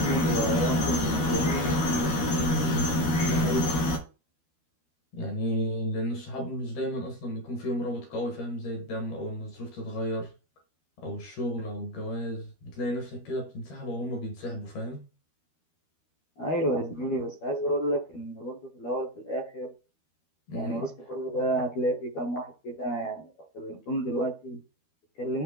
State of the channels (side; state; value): right; late; 12 ms